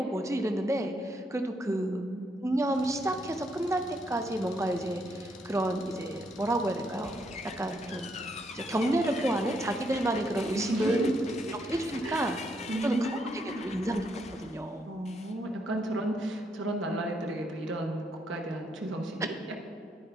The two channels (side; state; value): both; normal; correlation 0.75